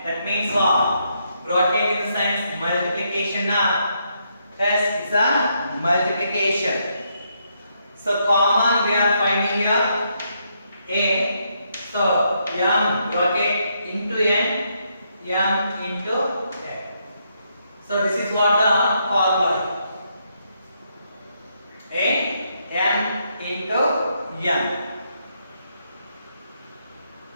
That means what? Bracket in the sense multiplication. Yes, it's a multiplication. So common we are finding here A. So m bracket into n, m into n. So this is what the formula. A m into n.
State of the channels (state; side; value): inverted; both; correlation -0.77